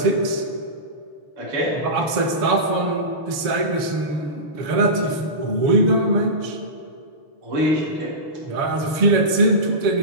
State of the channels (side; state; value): left; late; 7.1 ms